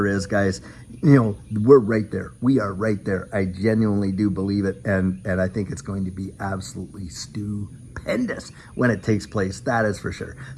is, guys, you know, we're right there. We are right there. I genuinely do believe it. And I think it's going to be absolutely stupendous when it takes place. That is for sure.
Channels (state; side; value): identical; both; correlation 1.00